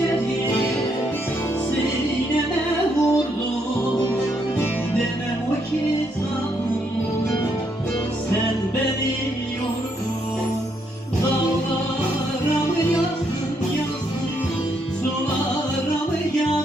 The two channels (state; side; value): normal; both; correlation 0.75